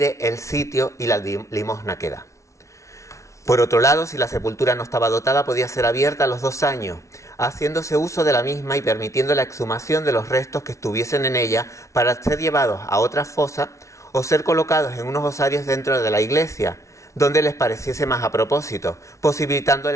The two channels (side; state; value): right; late; 0.14 ms